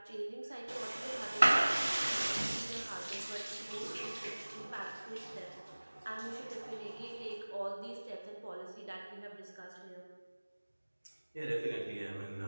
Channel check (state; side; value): inverted; both; correlation -1.00